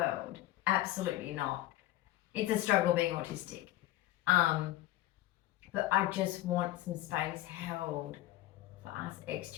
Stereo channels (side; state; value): right; quieter; 15.4 dB